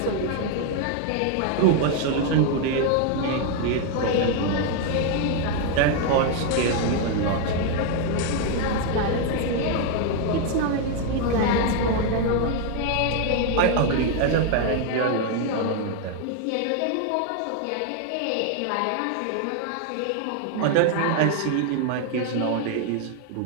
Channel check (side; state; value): both; different; correlation 0.01